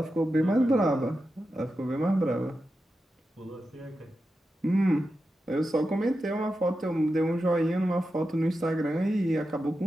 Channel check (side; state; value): both; normal; correlation 0.90